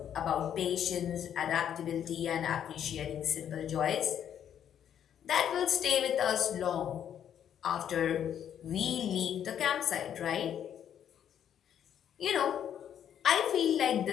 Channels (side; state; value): right; quieter; 9.5 dB